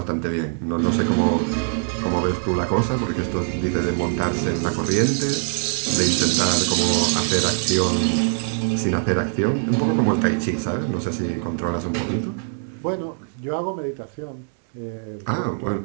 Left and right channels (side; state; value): left; silent; 64 dB below the other